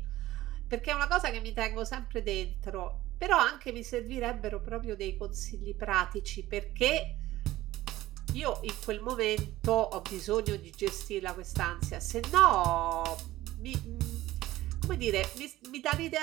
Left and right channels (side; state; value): left; quieter; 16.1 dB